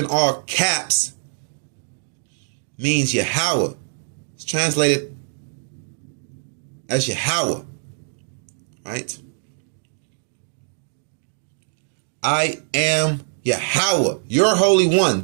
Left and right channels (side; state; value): left; silent; digital silence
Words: all caps means Yahweh. It's translated as Yahweh. Right? I am Yahweh, your Holy One,